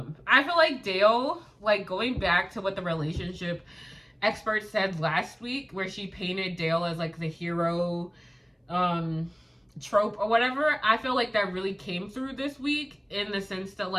feel like Dale, like, going back to what the relationship expert said last week, where she painted Dale as, like, the hero trope or whatever, I feel like that really came through this week, in the sense that,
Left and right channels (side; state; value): both; identical; correlation 1.00